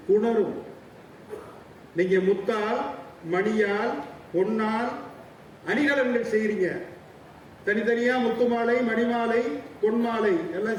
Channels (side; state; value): both; identical; correlation 1.00